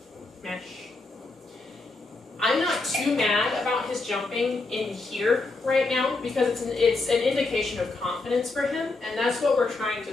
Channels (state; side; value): quieter; right; 3.4 dB